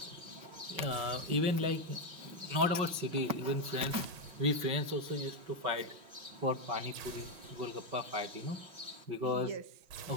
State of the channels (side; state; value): left; late; 5.4 ms